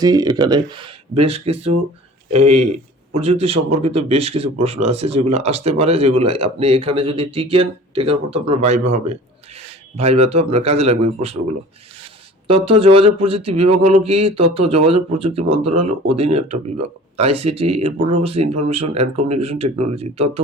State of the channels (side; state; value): both; normal; correlation 0.44